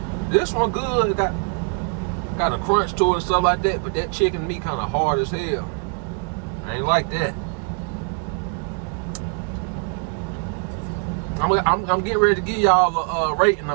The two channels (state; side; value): quieter; left; 39.2 dB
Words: This one good. It got a crunch to it and stuff like that, but that chicken meat kind of hard as hell. I ain't like that. I'm getting ready to give y'all a rating